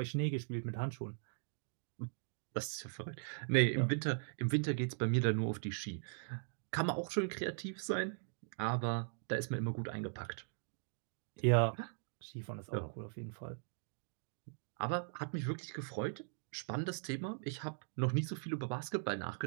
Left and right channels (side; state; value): left; silent; digital silence